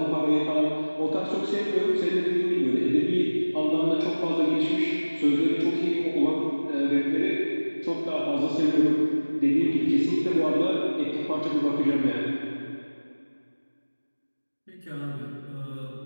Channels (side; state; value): both; inverted; correlation -1.00